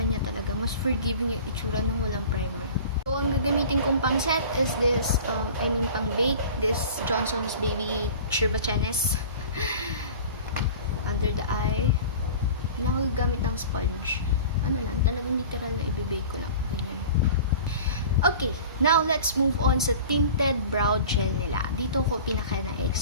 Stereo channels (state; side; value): inverted; both; correlation -0.40